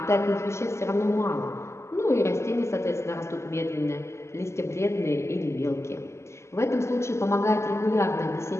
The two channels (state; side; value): late; right; 0.13 ms